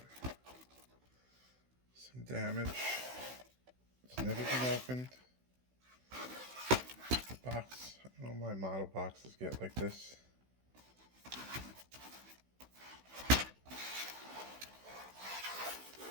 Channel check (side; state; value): left; late; 16 ms